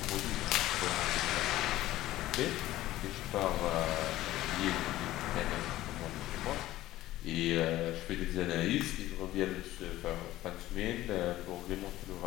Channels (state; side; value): quieter; right; 15.5 dB